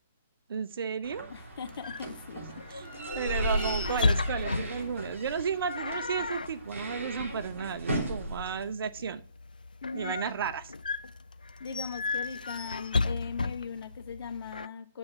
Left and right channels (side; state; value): both; inverted; correlation -0.63